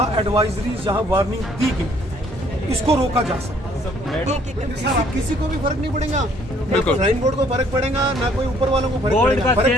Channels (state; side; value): normal; both; correlation 0.62